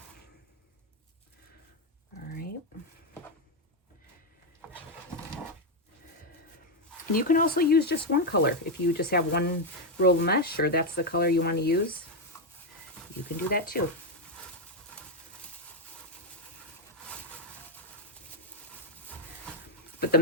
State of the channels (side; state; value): both; normal; correlation 0.04